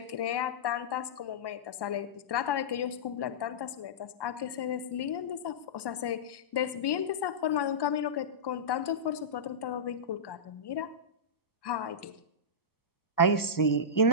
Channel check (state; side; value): late; right; 1.1 ms